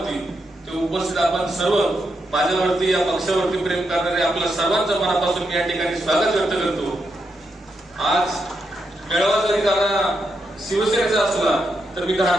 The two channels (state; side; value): normal; both; correlation 0.83